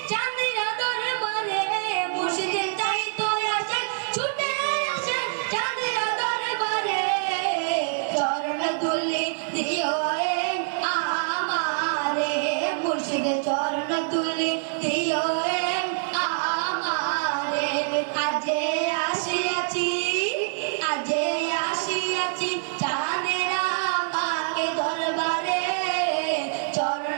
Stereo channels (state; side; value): silent; left; 61 dB below the other